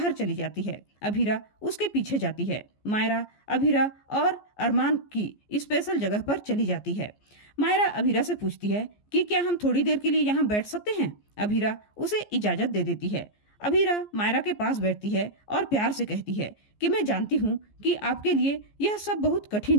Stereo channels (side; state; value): right; late; 14 ms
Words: चली जाती है। अभीरा उसके पीछे जाती है। मायरा अभीरा और अरमान की स्पेशल जगह पर चली जाती है। मायरा अभीरा से पूछती है कि क्या हम थोड़ी देर के लिए यहाँ बैठ सकते हैं? अभीरा उसे इजाजत दे देती है। अभीरा मायरा के पास बैठती है और प्यार से कहती है कि मैं जानती हूँ कि आपके लिए यह सब बहुत